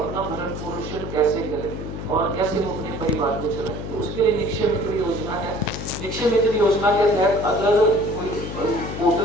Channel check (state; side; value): noise; left; hum, 7 dB below the sound